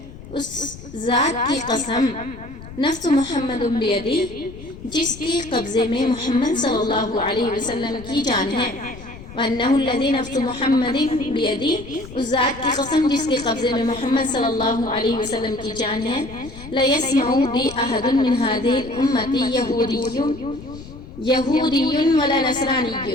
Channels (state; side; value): noise; left; rumble, 15 dB below the sound